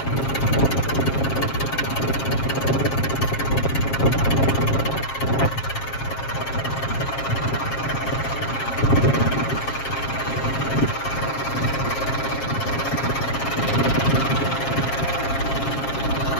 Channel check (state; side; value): late; right; 7.4 ms